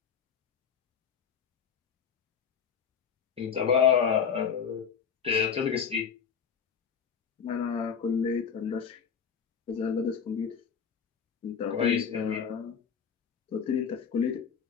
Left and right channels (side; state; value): right; quieter; 6.9 dB